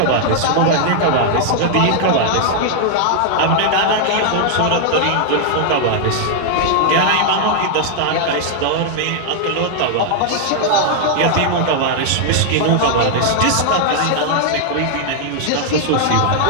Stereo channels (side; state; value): both; different; correlation 0.00